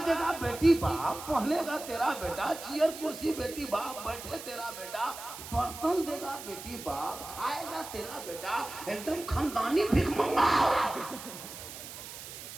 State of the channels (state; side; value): noise; right; hiss, 12 dB below the sound